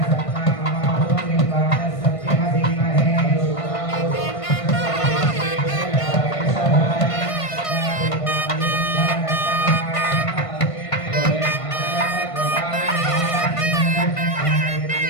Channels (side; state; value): right; late; 1.5 ms